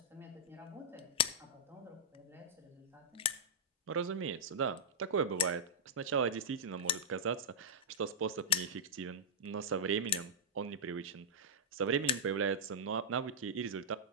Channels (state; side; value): normal; both; correlation -0.11